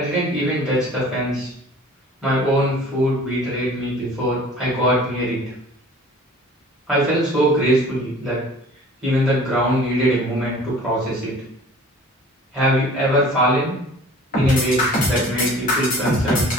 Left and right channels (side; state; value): both; normal; correlation 0.47